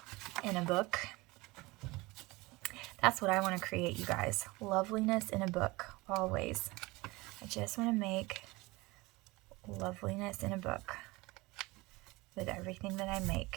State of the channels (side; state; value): left; quieter; 22.5 dB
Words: in a book That's what I want to create, you guys. Loveliness in a book, always. I just want to make loveliness in a book with everything that I